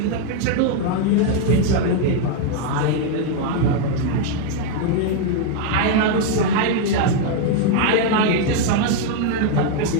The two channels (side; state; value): both; different; correlation 0.00